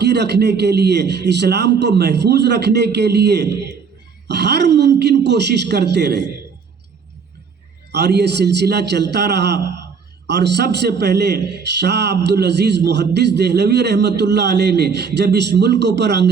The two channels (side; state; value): left; quieter; 5.8 dB